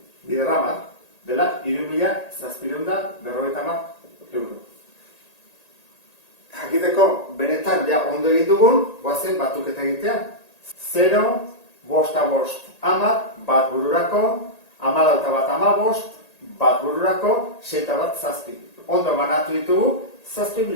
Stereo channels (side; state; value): right; late; 1.8 ms